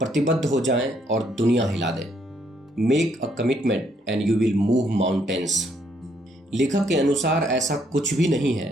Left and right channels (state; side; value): normal; both; correlation 0.71